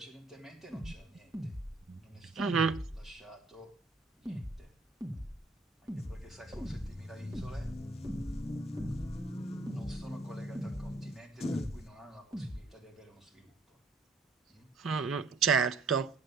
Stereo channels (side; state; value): left; quieter; 3.5 dB